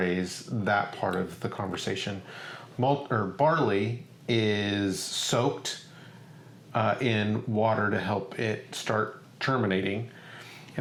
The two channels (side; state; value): both; identical; correlation 1.00